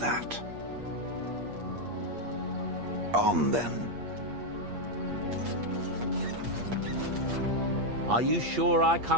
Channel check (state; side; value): late; left; 8.5 ms